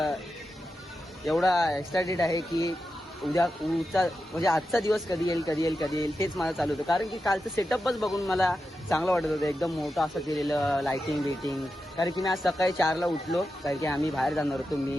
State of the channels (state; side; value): normal; both; correlation 0.90